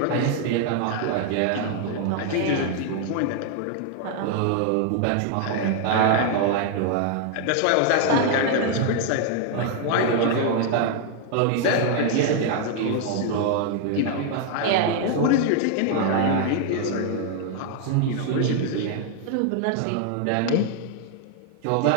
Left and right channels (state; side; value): different; both; correlation 0.00